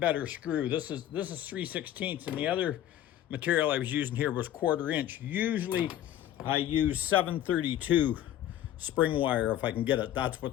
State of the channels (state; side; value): quieter; right; 12.0 dB